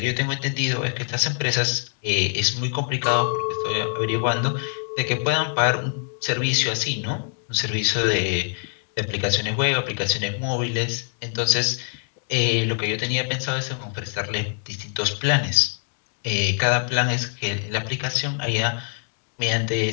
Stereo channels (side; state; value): right; silent; 58 dB below the other